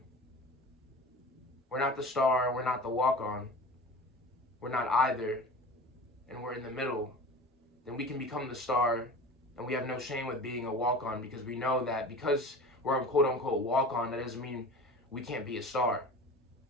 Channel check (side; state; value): both; normal; correlation 0.36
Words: we're not the star, we're not the walk-on, we're not either, and we're in the middle, then we can become the star, and we have no shame with being a walk-on, because we know that because we're a quote-unquote walk-on, that doesn't mean we can't be a star,